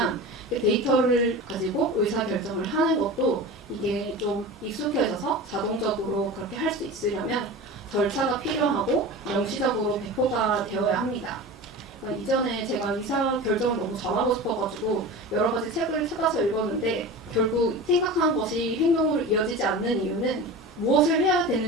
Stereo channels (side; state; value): both; normal; correlation 0.32